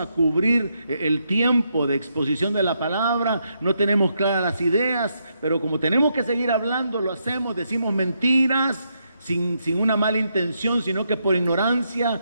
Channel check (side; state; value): both; inverted; correlation -0.79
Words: cubrir el tiempo de exposición de la palabra. No tenemos claras las ideas, pero como tenemos que seguir hablando, lo hacemos, decimos mentiras sin una mala intención, sino que por